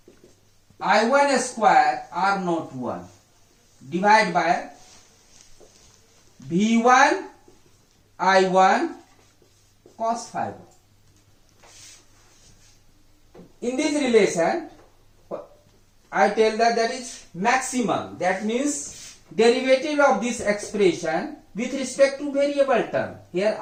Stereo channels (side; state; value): both; identical; correlation 1.00